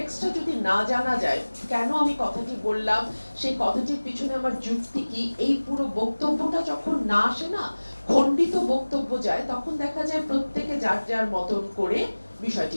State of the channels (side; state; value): both; inverted; correlation -1.00